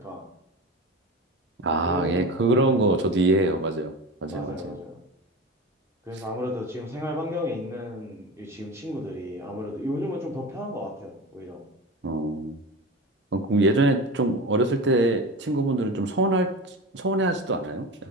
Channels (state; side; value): normal; both; correlation 0.29